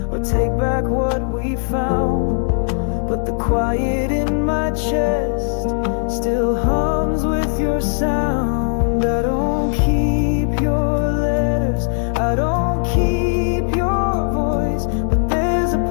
or take back what we found, but the quiet in my chest still hums with your sound. I don't keep your letters, I don't keep your voice, but there's a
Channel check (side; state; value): right; silent; 60 dB below the other